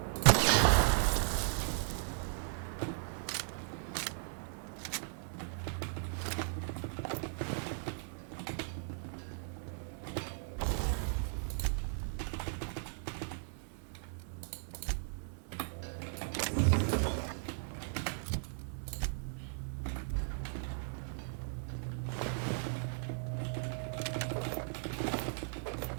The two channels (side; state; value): left; silent; 53 dB below the other